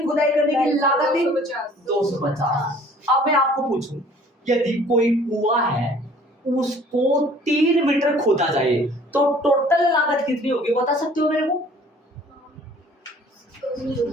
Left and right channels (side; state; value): both; normal; correlation 0.53